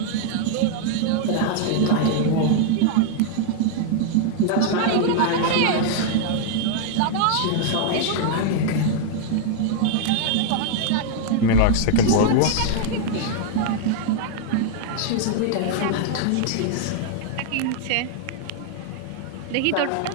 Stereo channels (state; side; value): different; both; correlation 0.00